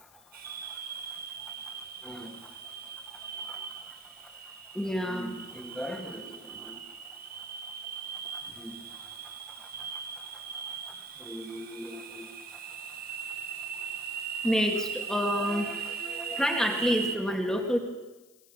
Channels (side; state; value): left; noise; hiss, 26 dB below the sound